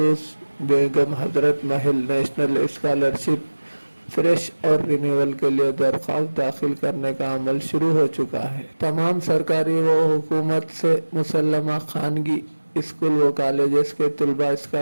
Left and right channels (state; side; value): inverted; both; correlation -1.00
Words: Begum Hazrat Mahal national scholarship fresh اور رینیول کے لیے درخواست داخل کرنے کا عمل شروع ہو چکا ہے۔ تمام سرکاری و حکومت سے مسلمہ خانگی اسکول و کالجز کے طلباء